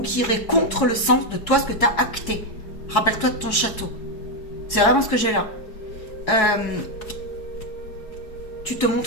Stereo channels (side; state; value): right; late; 4.7 ms